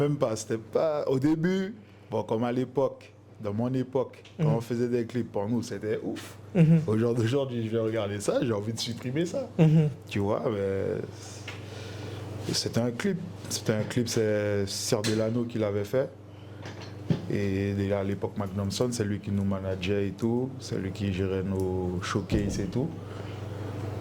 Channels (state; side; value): identical; both; correlation 1.00